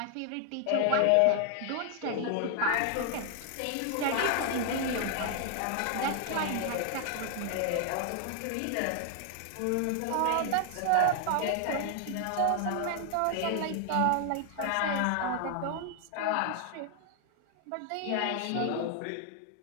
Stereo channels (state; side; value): different; both; correlation 0.00